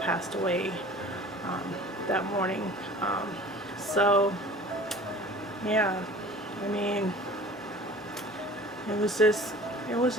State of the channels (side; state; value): both; normal; correlation 0.44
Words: away that morning. So yeah, I mean, it